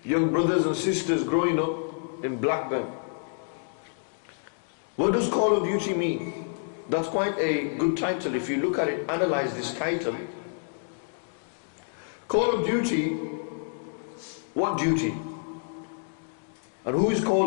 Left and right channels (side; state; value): right; silent; digital silence